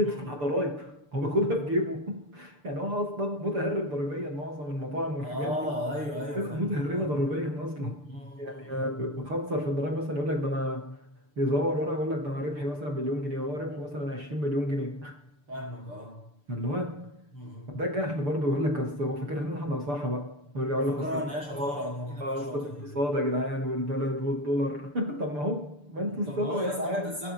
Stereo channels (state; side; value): late; left; 6.8 ms